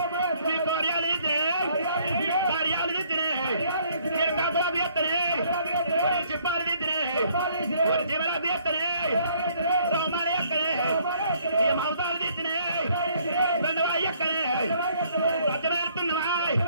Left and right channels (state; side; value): inverted; both; correlation -0.63